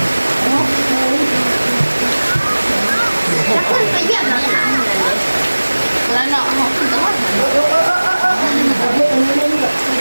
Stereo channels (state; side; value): inverted; both; correlation -1.00